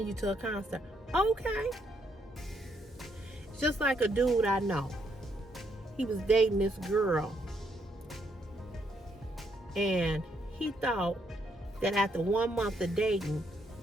you to a concert. Okay. It's just like a dude I know. He was dating this girl. And he thought that after 1 month of dating,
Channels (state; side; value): normal; both; correlation 0.74